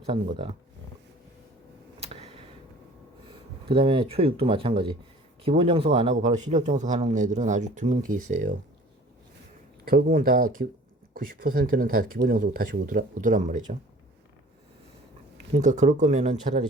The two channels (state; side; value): normal; both; correlation 0.48